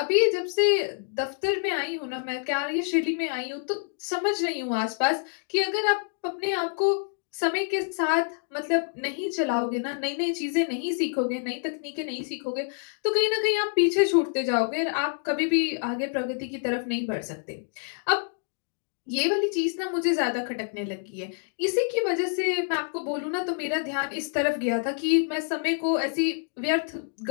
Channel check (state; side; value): silent; right; 60 dB below the other